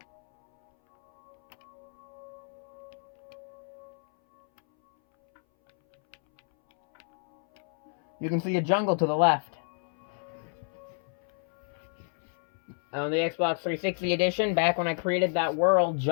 You can see a jungle to the left. On the Xbox 360 edition, back when I created that world,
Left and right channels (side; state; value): right; silent; 58 dB below the other